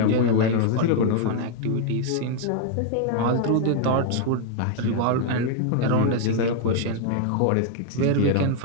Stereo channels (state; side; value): different; both; correlation 0.00